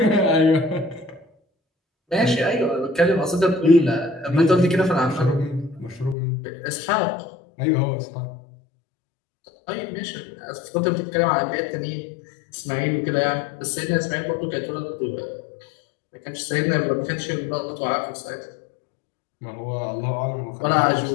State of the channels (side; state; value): right; drops out; at 6.2 s